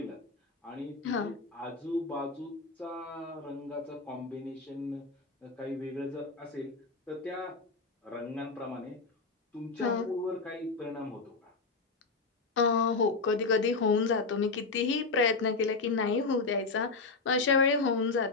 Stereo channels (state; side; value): quieter; right; 4.1 dB